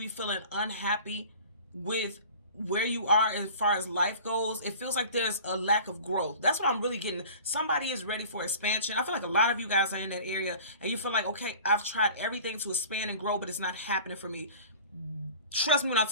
be feeling unhappy with where you are as far as life goes. It feels like there's a lack of growth. That's what I'm really getting. Somebody is ready for expansion. I feel like a lot of you guys are in that area and you feel like, okay, I've tried everything to expand and grow, but it's not happening for me. Trust me when I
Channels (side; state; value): both; inverted; correlation -0.42